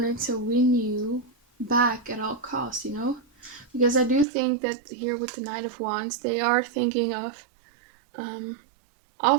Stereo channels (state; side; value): drops out; left; at 4.2 s